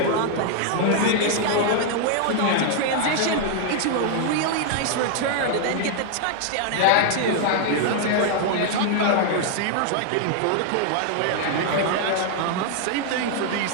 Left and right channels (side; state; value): both; different; correlation 0.00